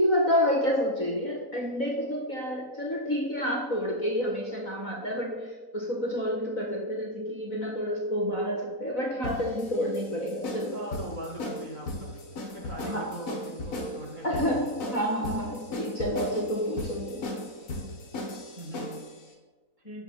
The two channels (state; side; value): late; right; 4.0 ms